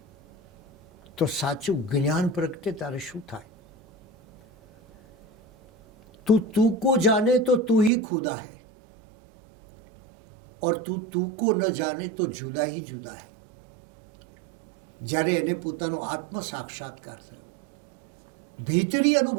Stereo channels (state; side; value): drops out; left; at 7.9 s